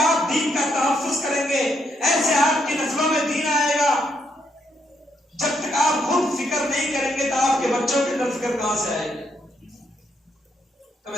دین کا تحفظ کریں گے، ایسے آپ کی نسلوں میں دین آئے گا۔ جب تک آپ خود فکر نہیں کریں گے تو آپ کے بچوں کے اندر فکر کہاں سے آئے گی؟ تو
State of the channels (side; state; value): both; normal; correlation 0.76